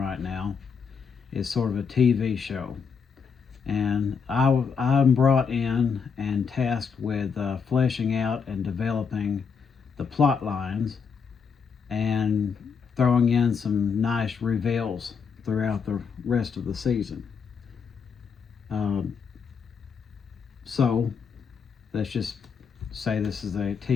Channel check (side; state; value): right; quieter; 6.0 dB